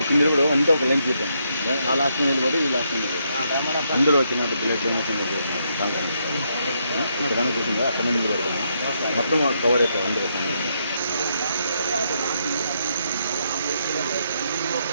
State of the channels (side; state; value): both; inverted; correlation -0.77